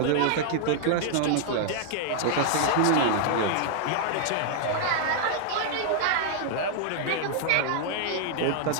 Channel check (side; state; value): both; different; correlation -0.01